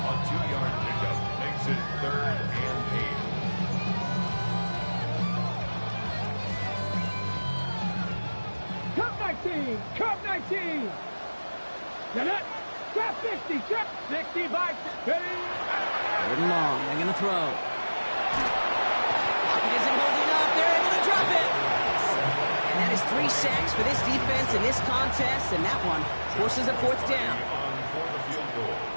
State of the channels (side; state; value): both; inverted; correlation -1.00